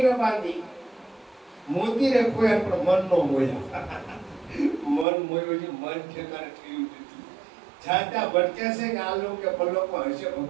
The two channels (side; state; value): left; drops out; at 5.1 s